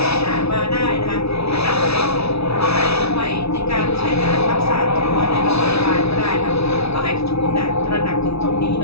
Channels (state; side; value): late; right; 0.79 ms